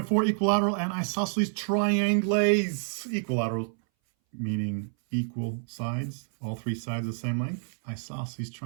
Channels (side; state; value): left; silent; 59 dB below the other